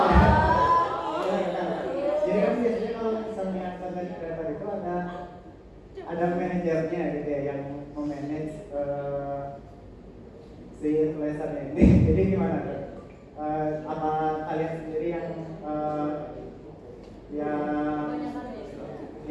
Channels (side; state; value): both; identical; correlation 1.00